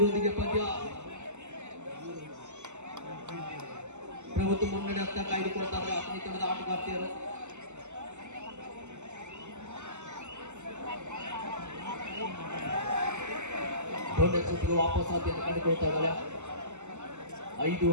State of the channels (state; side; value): late; left; 0.83 ms